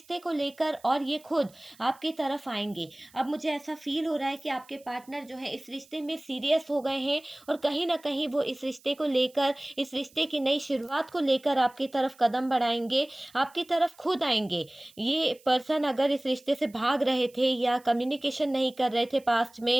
को लेकर, और ये खुद आपकी तरफ आएंगे। अब मुझे ऐसा फील हो रहा है कि आपके पार्टनर जो है इस रिश्ते में सीरियस हो गए हैं, और कहीं ना कहीं वो इस रिश्ते को लेकर, इस रिश्ते की नई शुरुआत को लेकर आपकी तरफ कदम बढ़ाएंगे, आपकी तरफ खुद आएंगे। ये पर्सन अगर इस रिश्ते से भाग रहे थे या कम्युनिकेशन नहीं कर रहे थे, पास्ट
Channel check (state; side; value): noise; right; hiss, 27 dB below the sound